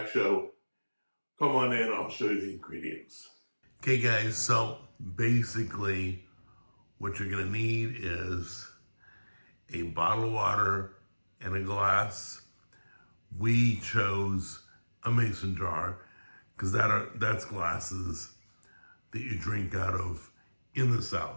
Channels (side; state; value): both; inverted; correlation -1.00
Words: show. Come on in, I'll show you the ingredients. Okay guys, so basically what you're gonna need is a bottle of water and a glass. We chose a mason jar because that's glasses that you drink out of in the